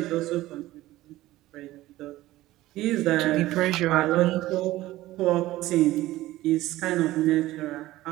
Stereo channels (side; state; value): left; quieter; 16.5 dB